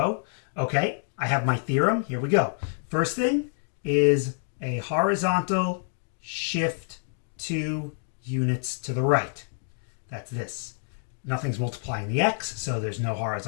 Okay, I have my theorem. Here we go. First thing is a horizontal shift 2 units to the right. That's this. Nothing's multiplying the x, so there's no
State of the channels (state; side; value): silent; right; digital silence